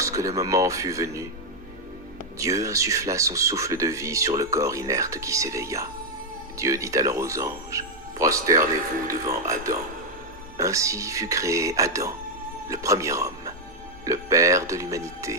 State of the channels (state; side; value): normal; both; correlation 0.01